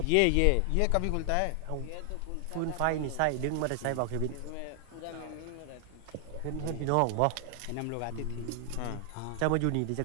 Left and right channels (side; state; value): both; different; correlation 0.00